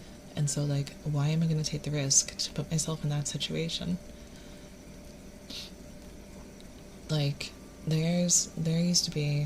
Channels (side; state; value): both; identical; correlation 1.00